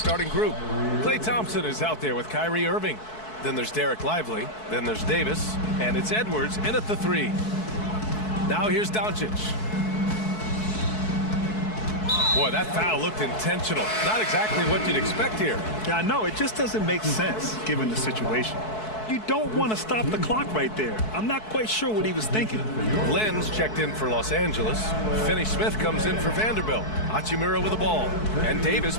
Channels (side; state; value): right; late; 4.6 ms